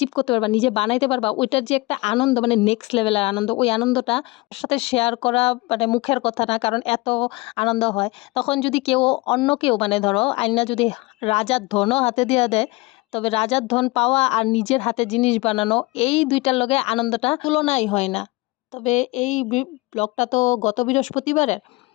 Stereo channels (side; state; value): right; quieter; 23.0 dB